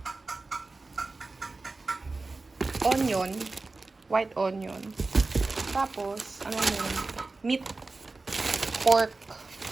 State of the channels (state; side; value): quieter; left; 3.6 dB